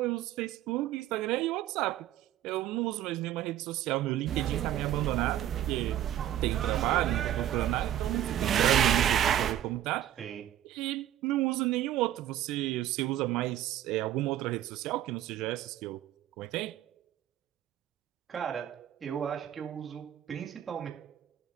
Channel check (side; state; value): left; quieter; 12.1 dB